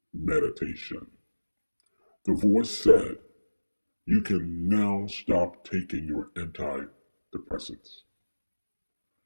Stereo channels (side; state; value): both; inverted; correlation -1.00